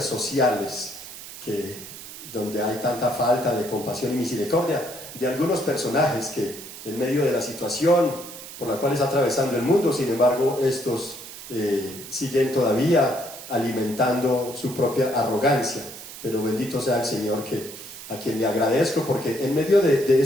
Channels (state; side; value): noise; right; hiss, 13 dB below the sound